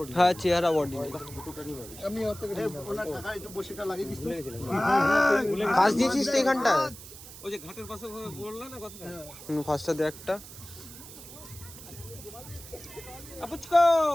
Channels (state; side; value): noise; right; hiss, 15 dB below the sound